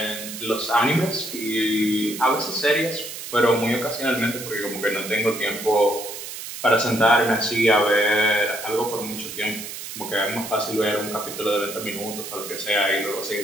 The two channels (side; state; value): right; noise; hiss, 9 dB below the sound